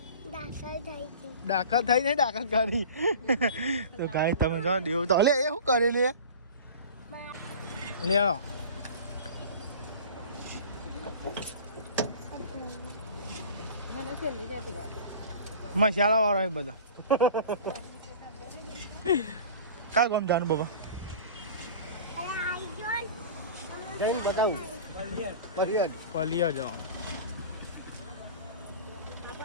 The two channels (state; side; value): inverted; both; correlation -0.39